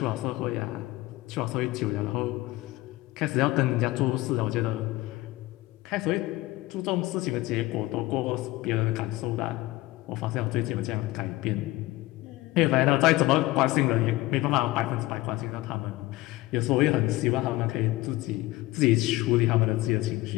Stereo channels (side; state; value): right; quieter; 18.9 dB